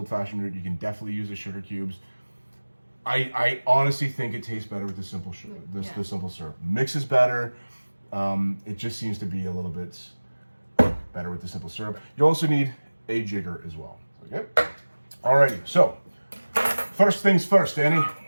route, you can definitely use the sugar cubes. I honestly think it tastes better with the simple sugar, the simple syrup. Mixes better. It just seems to be a little bit better with the simple syrup. You also need a jigger as well. Okay. Alrighty. So first things first, Annie. I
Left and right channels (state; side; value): inverted; both; correlation -1.00